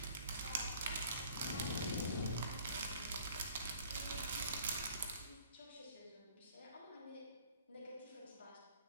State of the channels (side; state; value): both; inverted; correlation -0.53